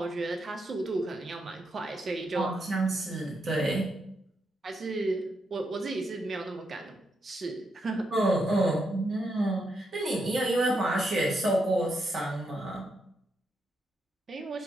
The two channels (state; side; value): normal; both; correlation 0.81